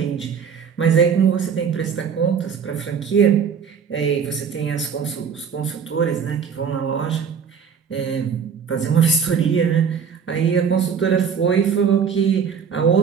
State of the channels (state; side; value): quieter; left; 6.9 dB